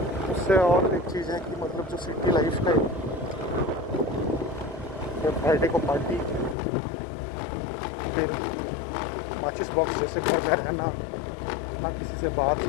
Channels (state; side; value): drops out; right; at 6.6 s